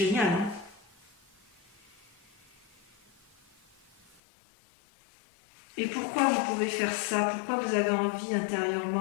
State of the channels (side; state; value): right; drops out; at 4.2 s